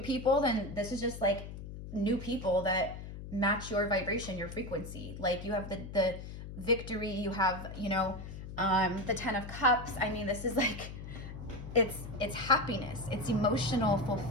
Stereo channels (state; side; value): noise; left; hum, 10 dB below the sound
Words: people, then this is just like new people that match your vibration, your frequency. Like you have the victory, you have, you know, the 10 of Cups. I mean, this is like, it's happiness, it's emotional